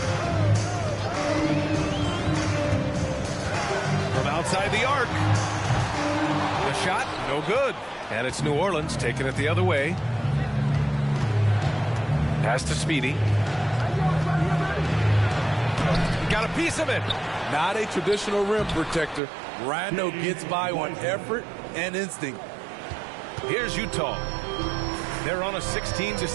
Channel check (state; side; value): drops out; left; at 19.2 s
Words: From outside the arc. The shot, no good. And it's New Orleans taking it the other way. Pass to Speedy. got a piece of it. Not a traditional rim protector. Randle gets by on effort and instinct. Here's Utah. They're on a